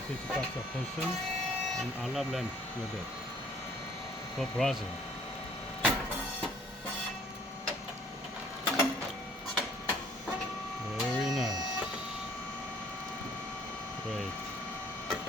It's box of function and olive lamp with it. For Brazil. Very nice. Great.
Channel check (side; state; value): both; normal; correlation 0.58